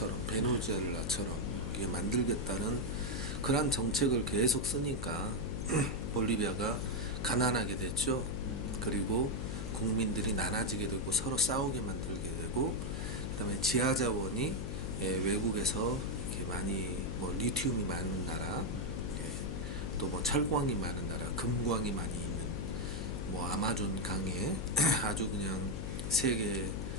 베네수엘라처럼 이게 만들겠다는 그런 정책을 계속 쓰니까 볼리비아가 가난하게 됐죠. 그리고 국민들이 나눠지게 되고 서로 싸우게 만들게 되고 그다음에 지하 자원이 외국에서 이렇게 많이 뭐 리튬이 많은 나라, 또 뭐 철광이 많은 나라, 금광이 많이 있는 뭐 아마존 강에 아주 그냥 세계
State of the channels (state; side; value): noise; left; hum, 4 dB below the sound